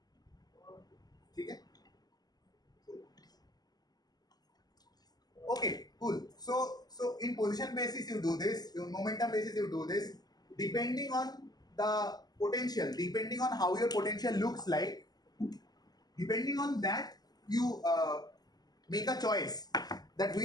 Okay? Okay, cool. So in position basis you do this, in momentum basis you do this. Depending on the potential, depending on how your potential looks like, depending on that you make a choice that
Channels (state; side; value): late; right; 0.19 ms